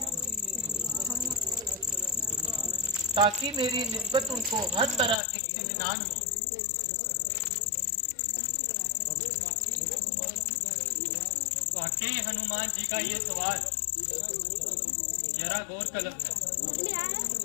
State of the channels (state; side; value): drops out; right; at 5.2 s